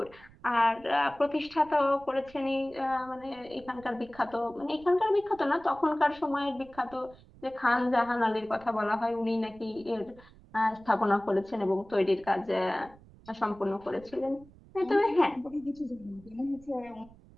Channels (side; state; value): right; noise; rumble, 24 dB below the sound